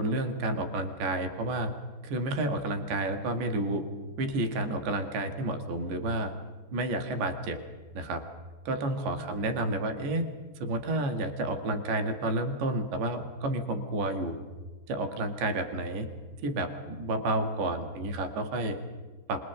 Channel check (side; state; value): left; late; 14 ms